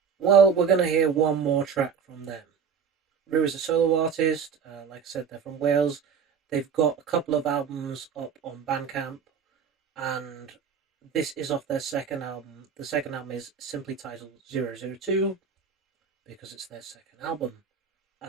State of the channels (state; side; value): quieter; left; 6.6 dB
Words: Well, we're going to hear one more track from them. Rue is a solo artist, like I said, they're from Wales. They've got a couple of albums up on Bandcamp, and this is off their second album. The second album is simply titled 002, because it's their second album.